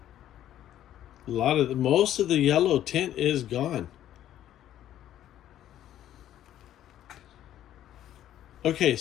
Most of the yellow tint is gone. Okay,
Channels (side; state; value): right; quieter; 11.9 dB